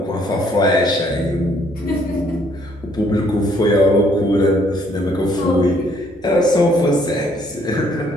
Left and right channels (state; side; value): normal; both; correlation 0.65